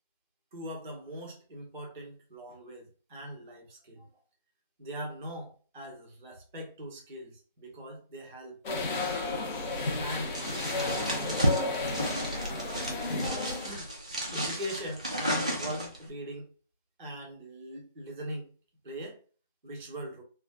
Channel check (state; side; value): inverted; both; correlation -0.48